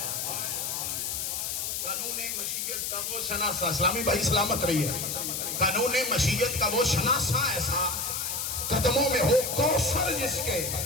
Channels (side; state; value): left; noise; hiss, 2 dB below the sound